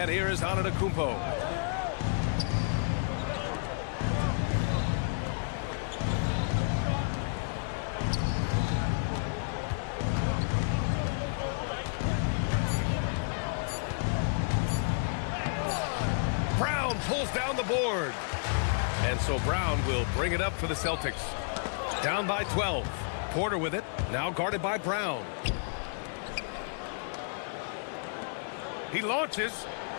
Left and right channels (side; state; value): right; silent; digital silence